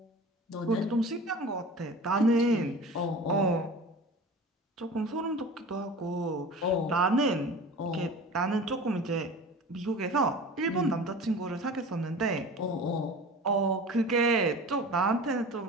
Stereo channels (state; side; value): normal; both; correlation 0.37